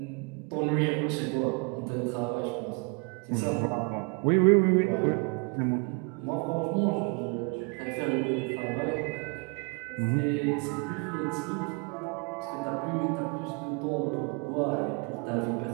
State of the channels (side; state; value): left; quieter; 32.7 dB